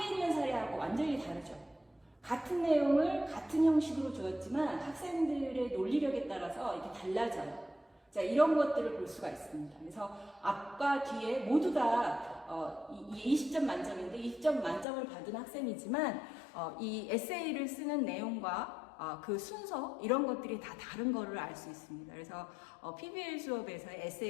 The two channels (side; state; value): right; drops out; at 14.9 s